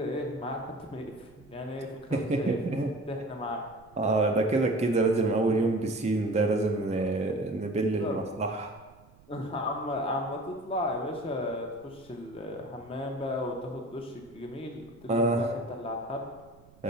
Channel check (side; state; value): right; noise; rumble, 26 dB below the sound